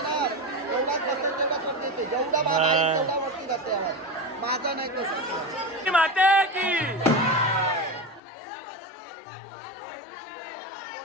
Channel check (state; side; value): drops out; right; at 8.2 s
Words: एवढाच बसता तेवढा करता येते जेवढा माझा आहे तेवढा वरती जाते आवाज माझा नाही कसं माते की